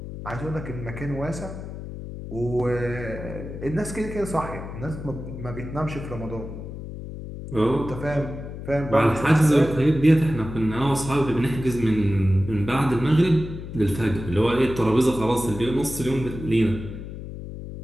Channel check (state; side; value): noise; left; hum, 10 dB below the sound